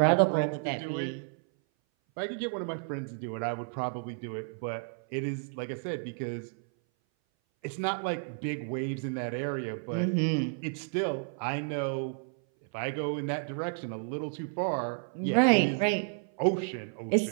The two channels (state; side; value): silent; left; 57 dB below the other